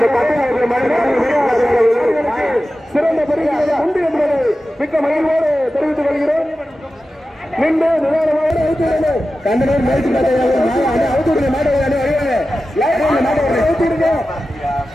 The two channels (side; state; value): both; normal; correlation 0.94